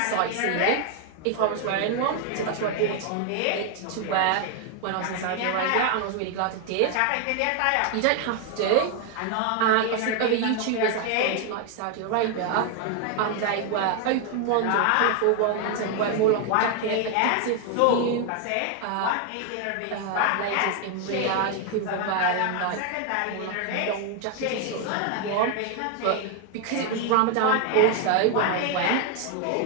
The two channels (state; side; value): different; both; correlation 0.01